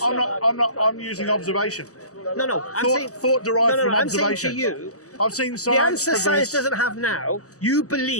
I'm not. I'm using observation. No. Thought derived from I'm observation. saying to you, I've seen science. the answer progress. science doesn't have now, you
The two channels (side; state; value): right; late; 0.66 ms